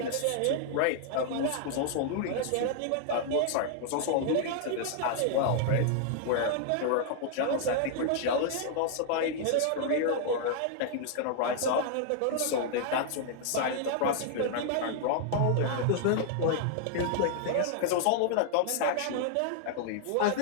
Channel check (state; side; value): different; both; correlation -0.01